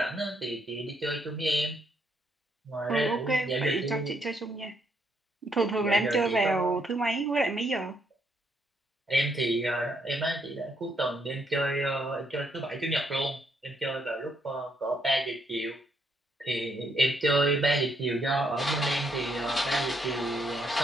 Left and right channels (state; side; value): normal; both; correlation 0.74